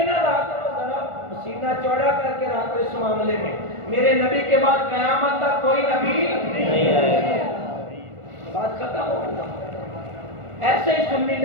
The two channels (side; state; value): left; late; 1.4 ms